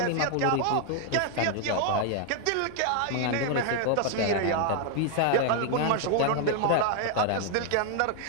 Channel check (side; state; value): both; different; correlation 0.00